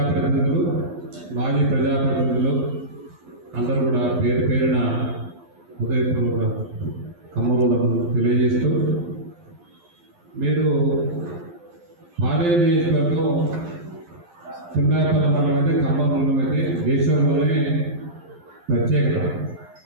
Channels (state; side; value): late; left; 11 ms